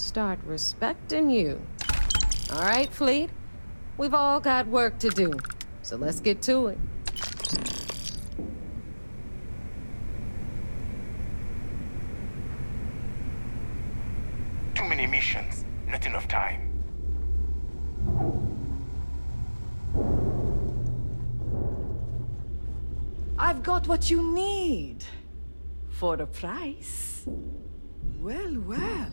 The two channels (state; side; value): inverted; both; correlation -1.00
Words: respecting you. All right, Fleet? We've all got work to do, so let's get to it. Too many missions, not enough time. I've got what you need. For a price. Well, well.